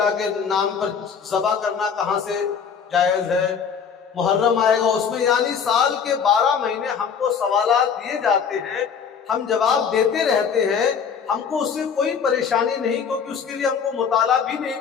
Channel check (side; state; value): right; quieter; 6.7 dB